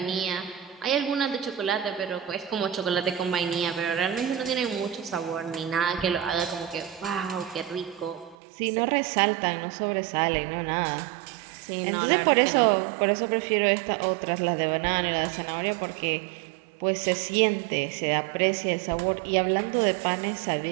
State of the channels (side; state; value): left; drops out; at 8.3 s